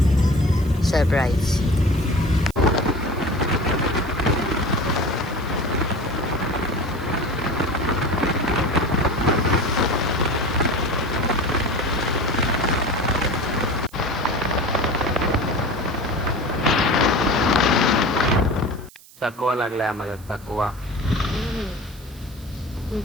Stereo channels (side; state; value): right; noise; hiss, 23 dB below the sound